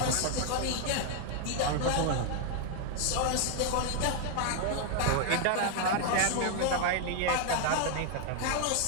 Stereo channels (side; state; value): both; different; correlation 0.00